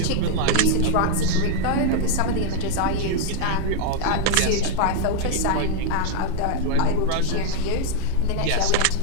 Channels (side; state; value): both; different; correlation 0.00